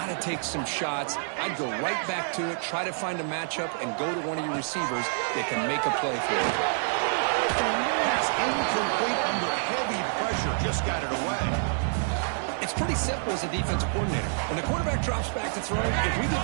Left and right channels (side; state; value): left; silent; digital silence